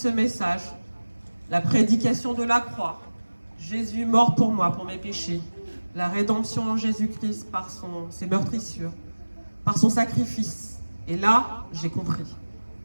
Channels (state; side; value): inverted; both; correlation -1.00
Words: message. La prédication de la croix. Jésus mort pour moi, pour mes péchés. La rédemption en Jésus-Christ par ses meurtrissures, par son sacrifice. Et là, j'ai compris.